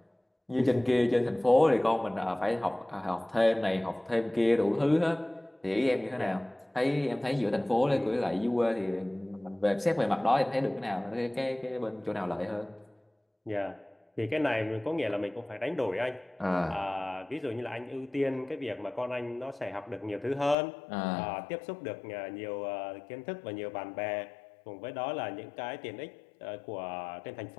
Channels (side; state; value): right; drops out; at 20.6 s